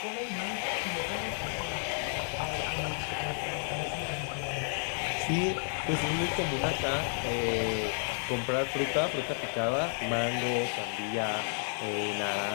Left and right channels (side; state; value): right; silent; 57 dB below the other